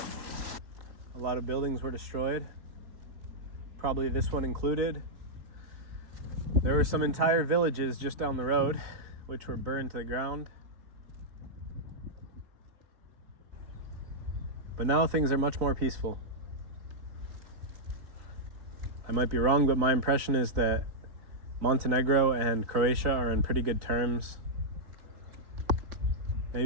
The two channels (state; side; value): late; left; 3.7 ms